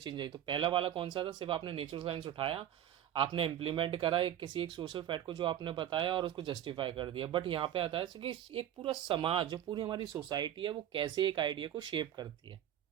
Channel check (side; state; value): left; quieter; 11.0 dB